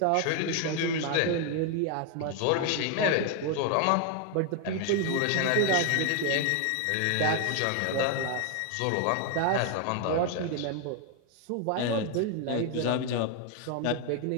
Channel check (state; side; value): different; both; correlation 0.01